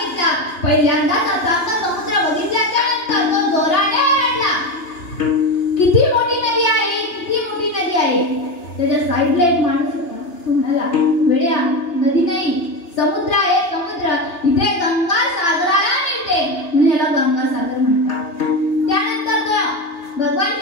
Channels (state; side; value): late; right; 2.9 ms